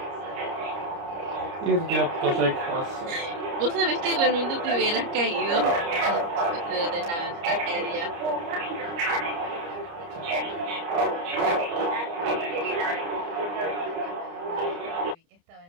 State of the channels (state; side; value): late; left; 29 ms